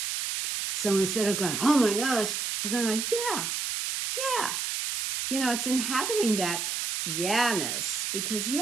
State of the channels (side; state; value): right; noise; hiss, 2 dB below the sound